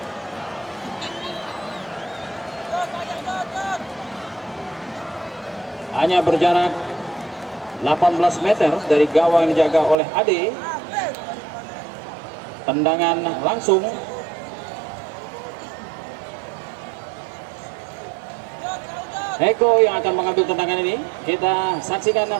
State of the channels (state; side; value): drops out; left; at 10.0 s